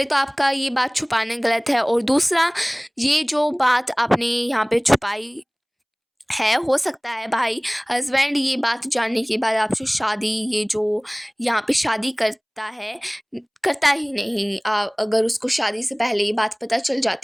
तो आपका ये बात छुपाना गलत है, और दूसरा ये जो बात आपने यहाँ पे छुपाई है, हो सकता है भाई हस्बैंड ये बात जानने के बाद आपसे शादी, ये जो यहाँ पे शादी करता है, करता ही नहीं। अगर उसको शादी से पहले ये बात पता चल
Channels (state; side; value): identical; both; correlation 1.00